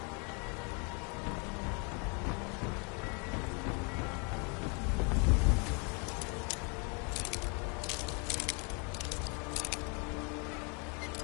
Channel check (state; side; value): quieter; right; 34.6 dB